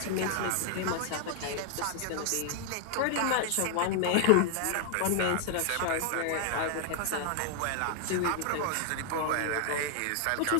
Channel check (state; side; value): different; both; correlation 0.00